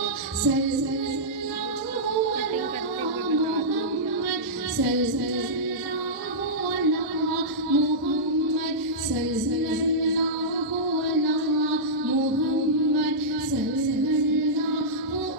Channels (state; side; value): normal; both; correlation -0.13